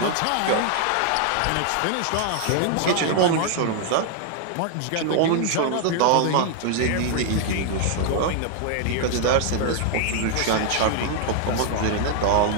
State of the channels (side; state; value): both; different; correlation 0.00